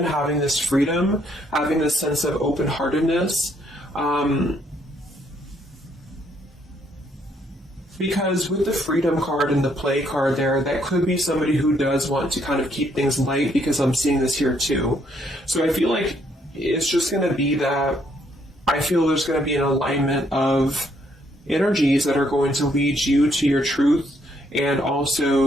having this freedom, having this sense of open-heartedness. Because with the freedom card and the play card there, that could be somebody who does want to kind of keep things light, because I'm seeing this here too. So I feel like it's just going to be that I feel there's going to be an alignment of energies that are going to lead you to your truth, and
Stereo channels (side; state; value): both; normal; correlation 0.70